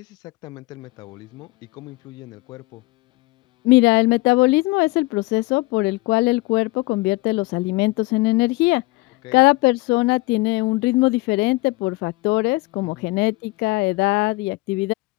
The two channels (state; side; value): quieter; right; 22.4 dB